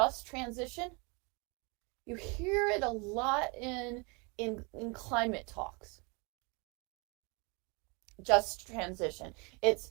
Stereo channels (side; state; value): left; quieter; 30.7 dB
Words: transition. You hear it a lot in climate talks. Just transition. It's